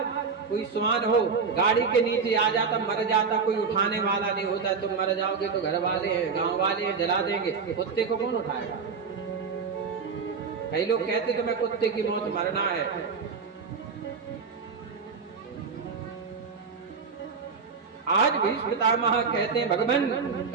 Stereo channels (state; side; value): quieter; left; 5.4 dB